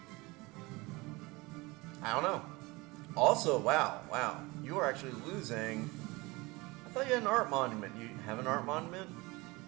I don't know. Also, wow. You are actually losing... I thought you had an art monument. You have an art monument?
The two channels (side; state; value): left; quieter; 23.4 dB